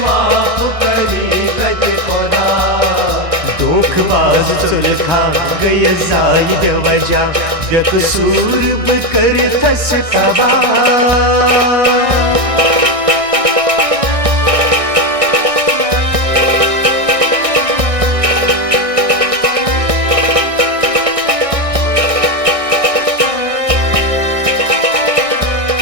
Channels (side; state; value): left; late; 1.6 ms